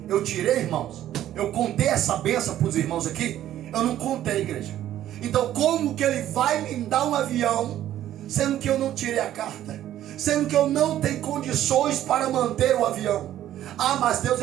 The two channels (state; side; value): quieter; left; 12.3 dB